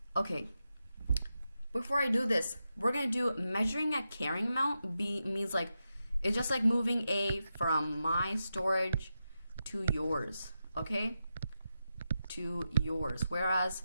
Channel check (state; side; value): inverted; both; correlation -0.89